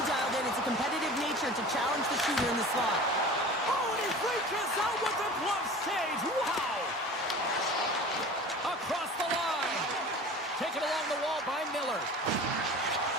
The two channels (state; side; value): normal; both; correlation 0.38